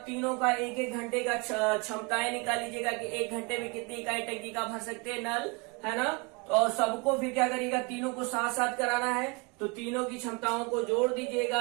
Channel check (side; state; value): left; quieter; 30.0 dB